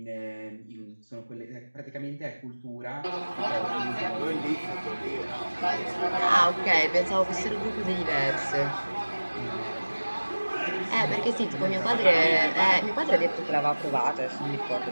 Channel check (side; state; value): both; inverted; correlation -1.00